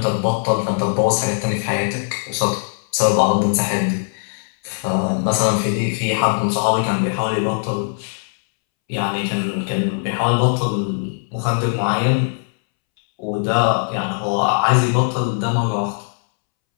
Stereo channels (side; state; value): right; silent; 66 dB below the other